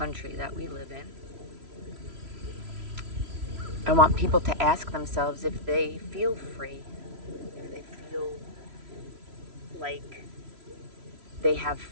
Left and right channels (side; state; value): left; late; 3.0 ms